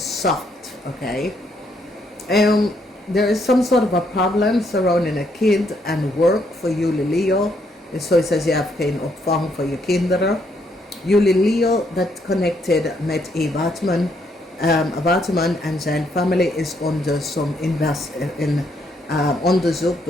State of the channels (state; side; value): normal; both; correlation 0.73